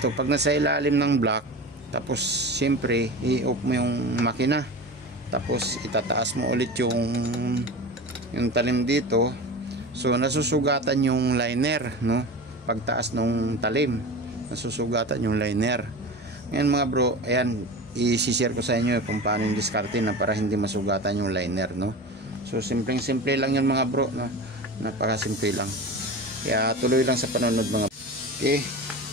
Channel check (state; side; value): normal; both; correlation 0.30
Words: pag nasa ilalim ng block, tapos siyempre i-off mo yung makina. Tapos itataas mo ulit yung talim dito. So nasusugatan yung liner, no? Pagtaas ng talim, nasusugatan yung liner. Ngayon mga bro, ayan, i-share ko sa inyo kung paano yung diskarte na para hindi masugatan yung liner, no? So simple lang yun mga bro, no? Napakasimple lang. Kaya tuloy lang sa panonood mga bro. Okay.